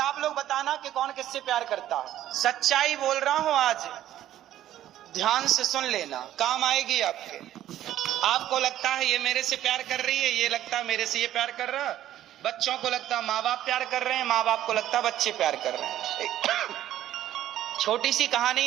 लोग बताना कि कौन किससे प्यार करता है। सच्चाई बोल रहा हूं आज, ध्यान से सुन लेना, काम आएगी आपके। आपको लगता है ये मेरे से प्यार कर रही है, ये लगता है मेरे से ये प्यार कर रहा है। बच्चों को लगता है माँ बाप प्यार कर रहे हैं, माँ बाप को लगता है बच्चे प्यार कर रहे हैं। छोटी सी कहानी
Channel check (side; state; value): left; quieter; 12.6 dB